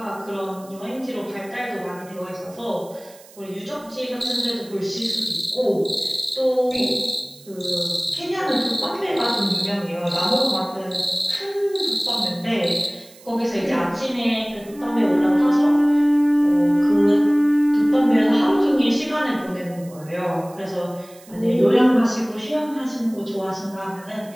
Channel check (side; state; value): right; noise; hiss, 23 dB below the sound